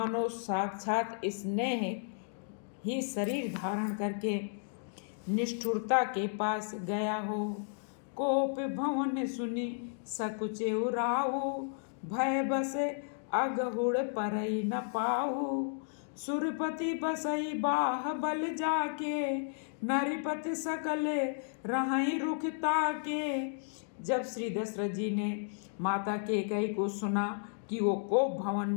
साक्षात स्नेह ही शरीर धारण करके निष्ठुरता के पास गया हो। कोप भवन सुनि सकुचे उराऊ, भय बसे अगहुड़ परई न पाऊ। सुरपति बसई बाह बल जाके, नरिपति सकल रहई रुख ताके। जब श्री दशरथ जी ने माता कैकेयी को सुना कि वो कोप भवन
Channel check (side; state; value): right; silent; digital silence